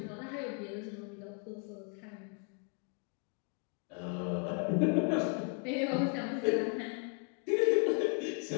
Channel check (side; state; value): right; quieter; 39.5 dB